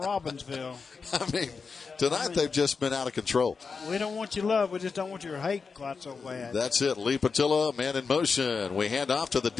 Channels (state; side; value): quieter; right; 5.0 dB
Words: I mean, tonight they've just been out of control. We don't want your love. We just don't want your hate quite so bad. That's it. Lee Patillo, man in motion. We hand off to the